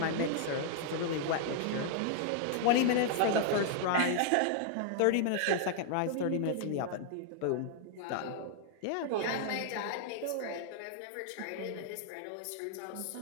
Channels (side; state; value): both; different; correlation -0.01